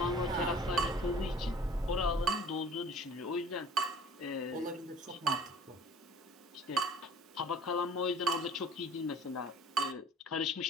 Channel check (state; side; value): normal; both; correlation 0.48